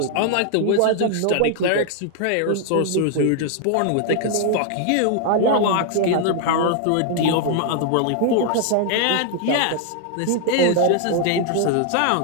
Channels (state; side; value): different; both; correlation 0.00